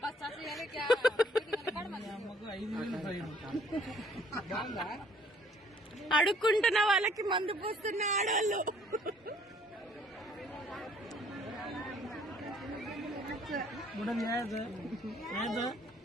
అడుక్కుంటున్న వాళ్ళకి మందు పోస్తున్న ఆడవాళ్ళు.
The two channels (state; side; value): normal; both; correlation 0.60